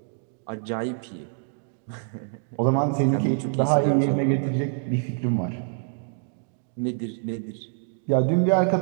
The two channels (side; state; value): left; silent; 61 dB below the other